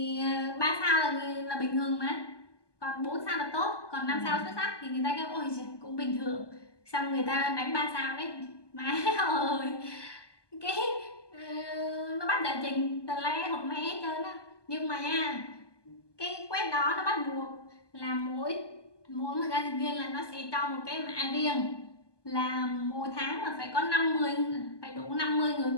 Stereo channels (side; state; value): right; late; 1.2 ms